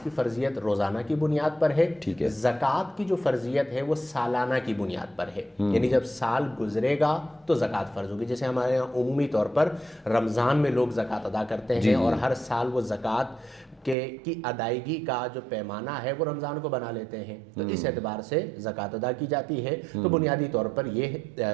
کی فرضیت روزانہ کی بنیاد پر ہے، زکوٰۃ کی جو فرضیت ہے وہ سالانہ کی بنیاد پر ہے، یعنی جب سال گزرے گا تو زکوٰۃ فرض ہوگی۔ جیسے ہمارے یہاں عمومی طور پر رمضان میں لوگ زکوٰۃ ادا کرتے ہیں، اور ہر سال وہ زکوٰۃ کی ادائیگی کا جو پیمانہ ہے وہ رمضان کو بنا لیتے ہیں، تو اس اعتبار سے زکوٰۃ ادا کی جاتی ہے۔ تو بنیادی طور پر یہ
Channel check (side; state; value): left; drops out; at 14.0 s